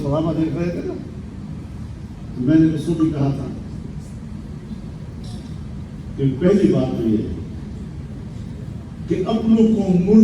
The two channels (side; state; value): both; identical; correlation 1.00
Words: سلامہ دیکھ رہے تھے نا, تو میں نے اس کو بھی کہا تھا کہ پہلی بات تو یہ ہے کہ اپنوں کو